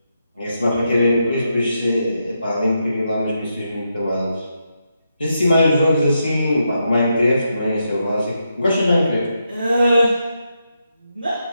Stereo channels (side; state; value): both; inverted; correlation -0.83